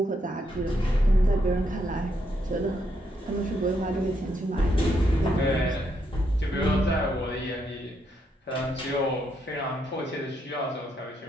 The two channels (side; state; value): both; normal; correlation 0.77